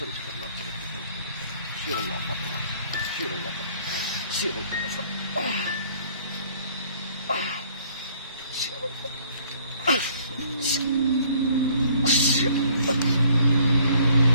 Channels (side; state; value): both; inverted; correlation -0.60